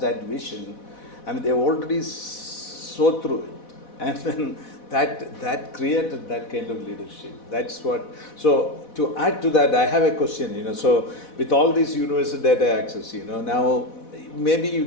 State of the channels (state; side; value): late; right; 4.1 ms